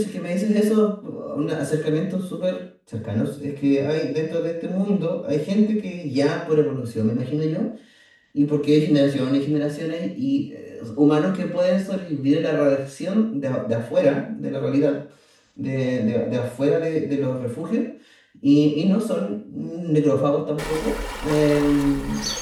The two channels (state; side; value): identical; both; correlation 1.00